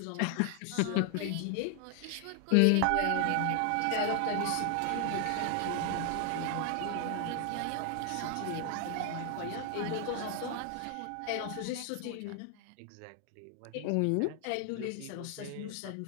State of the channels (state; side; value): different; both; correlation 0.00